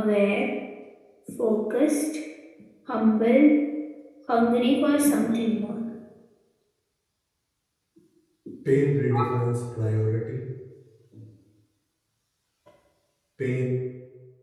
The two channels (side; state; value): both; identical; correlation 1.00